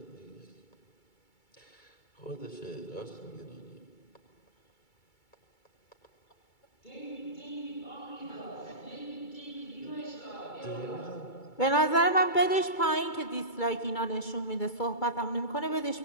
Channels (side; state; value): right; late; 2.3 ms